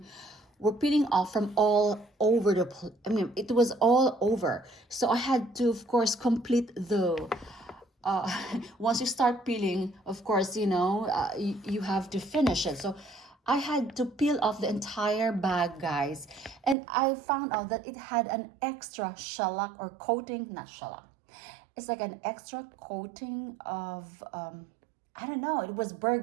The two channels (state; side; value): drops out; left; at 16.8 s